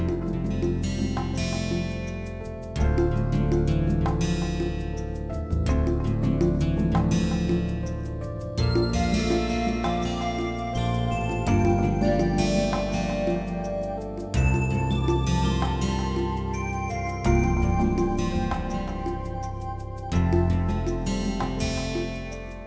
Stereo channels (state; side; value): identical; both; correlation 1.00